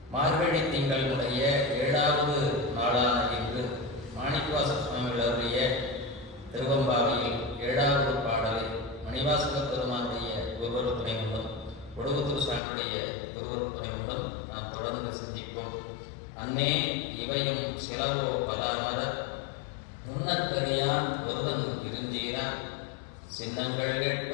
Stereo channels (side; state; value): right; drops out; at 12.6 s